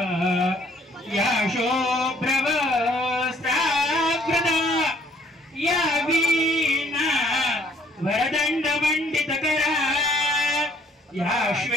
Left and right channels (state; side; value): normal; both; correlation 0.62